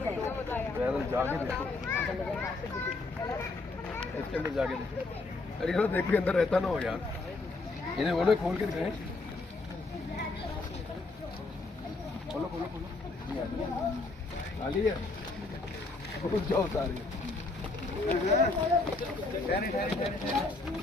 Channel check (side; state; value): right; quieter; 3.4 dB